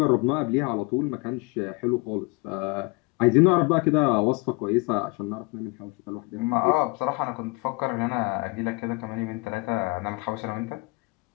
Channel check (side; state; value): right; quieter; 26.7 dB